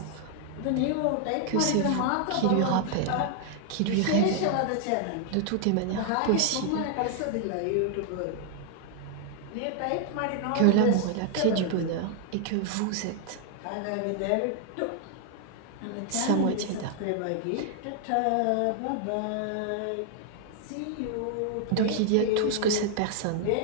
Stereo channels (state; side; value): different; both; correlation 0.00